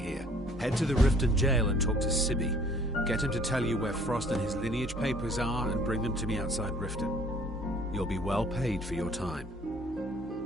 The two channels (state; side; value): normal; both; correlation 0.56